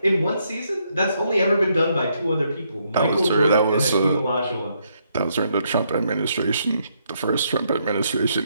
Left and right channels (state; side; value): inverted; both; correlation -0.75